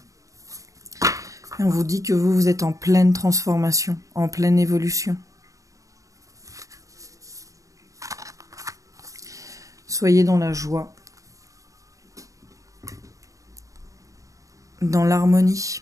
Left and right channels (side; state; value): left; late; 0.16 ms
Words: ? Et on vous dit que vous êtes en pleine transformation, en pleine évolution. Soyez dans la joie, dans